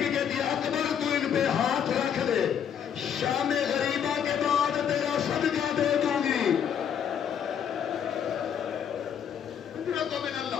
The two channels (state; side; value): quieter; right; 8.4 dB